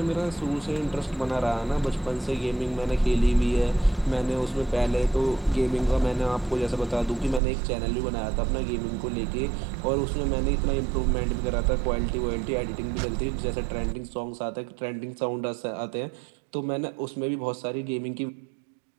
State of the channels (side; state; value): left; drops out; at 7.4 s